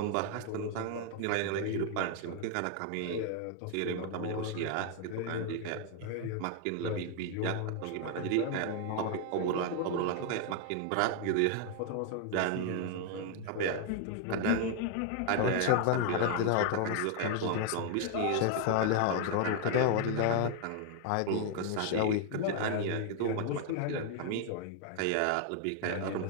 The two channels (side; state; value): both; different; correlation 0.00